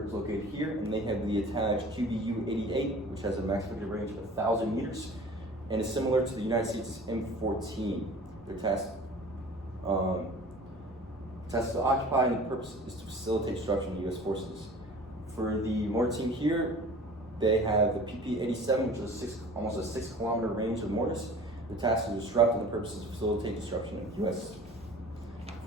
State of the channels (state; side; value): normal; both; correlation 0.43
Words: is located here, and they have the attached QBU-88, which has a max effective range of 1,000 meters, and is similar to the United States' M14. Their task is to occupy, and the purpose is to facilitate destruction of U.S. forces. For the mortar team here, they have the PP-87, which is almost a 6-kilometer range of mortars. The task is to disrupt, and the purpose is to facilitate destruction of U.S.